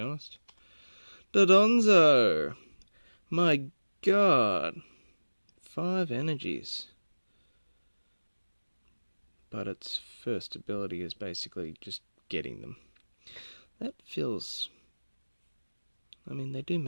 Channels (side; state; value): both; inverted; correlation -1.00